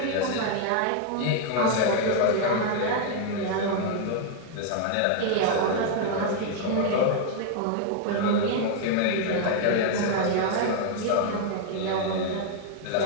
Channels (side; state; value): both; different; correlation 0.00